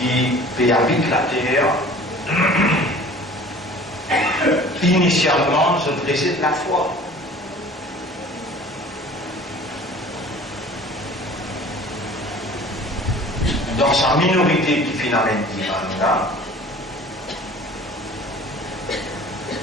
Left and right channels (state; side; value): normal; both; correlation 0.46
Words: habite la terre, initialement, je réside la foi. Dans sa minorité qui finalement dit là,